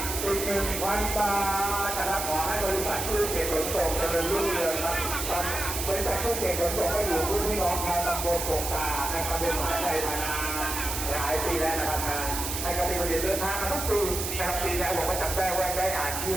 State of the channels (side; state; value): right; noise; hiss, 4 dB below the sound